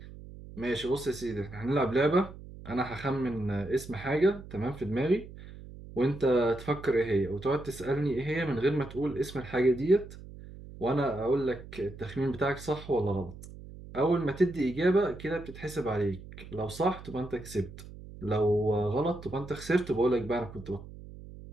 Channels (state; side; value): noise; right; hum, 15 dB below the sound